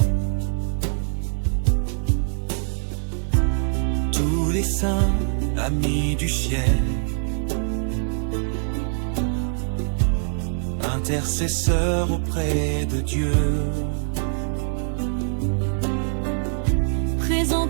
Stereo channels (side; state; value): left; silent; digital silence